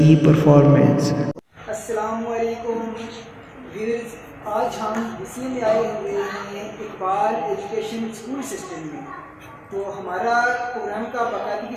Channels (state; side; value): identical; both; correlation 1.00